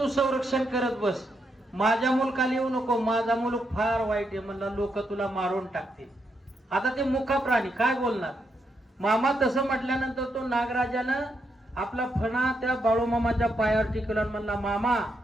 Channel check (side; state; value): both; normal; correlation 0.80